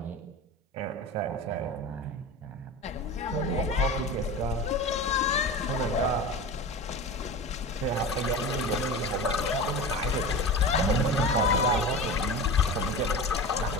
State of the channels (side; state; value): both; normal; correlation 0.30